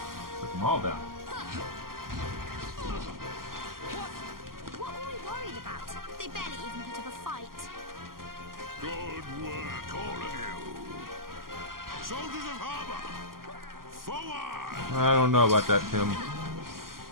All down. What were we worried about? They barely even put up a fight. Good work, all of you. Soldiers of Harbor, forward! I don't know about that, Tim.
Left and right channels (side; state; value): left; late; 0.92 ms